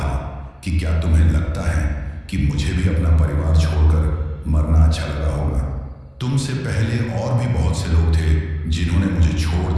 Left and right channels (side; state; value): both; identical; correlation 1.00